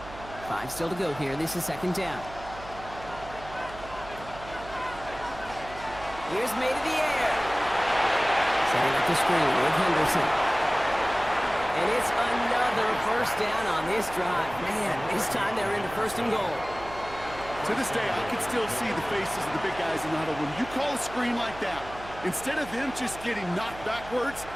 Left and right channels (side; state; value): right; noise; hum, 15 dB below the sound